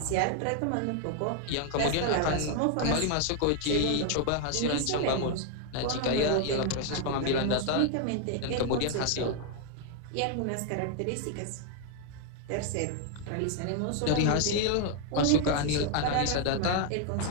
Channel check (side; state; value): both; different; correlation 0.00